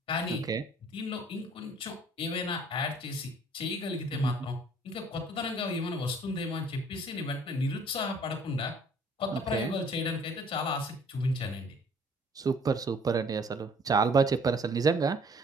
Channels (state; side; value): normal; both; correlation 0.57